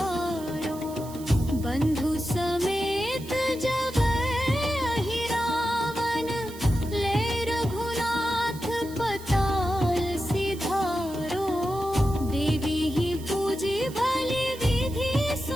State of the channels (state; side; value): noise; right; hiss, 18 dB below the sound